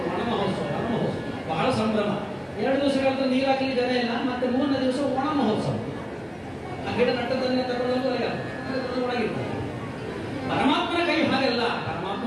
ವನ ಮಹೋತ್ಸವ ಬಹಳ ಸಂಭ್ರಮ. 2 ದಿವಸಗಳ ನೀರು ಹಾಕಲಿಕ್ಕೆ ಜನ ಇಲ್ಲ. ಮತ್ತೆ 3ನೇ ದಿವಸ ಒಣ ಮಹೋತ್ಸವ. ಆ ಗಿಡ ನಟ್ಟದನ್ನೇ ತಗೊಂಡು ಒಳಗಿರ್ತಾರೆ. ಪರಮಾತ್ಮನ ಕೈ ಹಾಗೆಲ್ಲ.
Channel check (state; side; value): identical; both; correlation 1.00